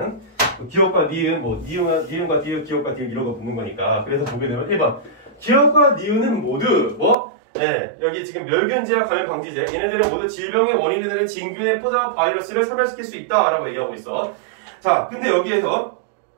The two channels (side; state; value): left; drops out; at 7.2 s